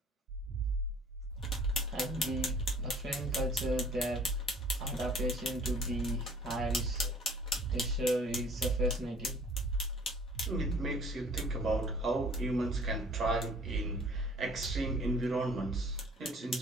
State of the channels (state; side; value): normal; both; correlation 0.53